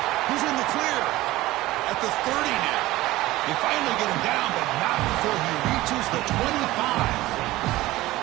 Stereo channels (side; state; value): left; quieter; 17.7 dB